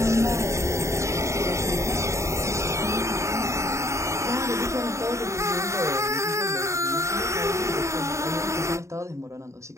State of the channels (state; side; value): late; left; 0.14 ms